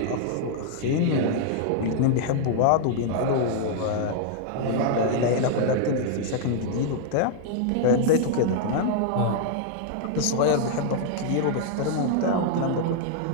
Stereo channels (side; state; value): both; different; correlation -0.01